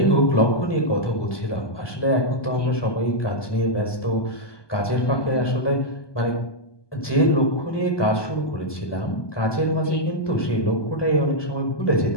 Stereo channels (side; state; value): right; late; 1.2 ms